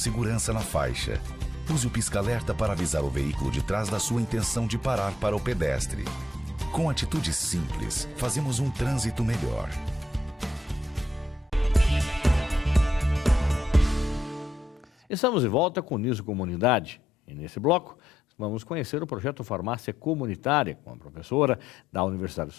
na faixa. Use o pisca-alerta para avisar o veículo de trás da sua intenção de parar para o pedestre. Com atitudes simples, fazemos um trânsito melhor. Estamos de volta com o Uniso Comunidade e nesse bloco vamos conhecer o projeto Farmácia Comunitária com a professora da Universidade de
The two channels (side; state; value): both; normal; correlation 0.79